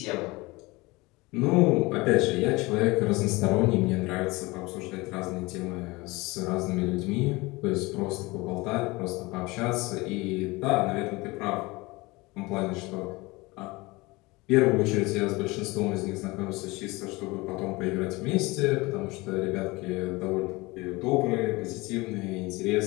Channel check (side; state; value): right; quieter; 22.9 dB